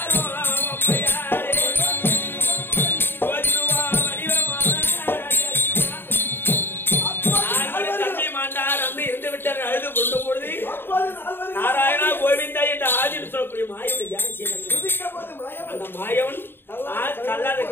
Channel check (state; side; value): late; right; 0.10 ms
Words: நாராயணா கோவிந்தா என்ற ஆதின்னு சொல்லக்கூடிய மாயவனை தியானம் செய்தார். அந்த மாயவன் கல்லாத